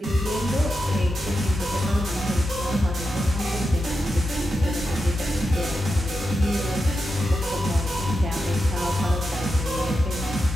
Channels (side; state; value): both; normal; correlation 0.88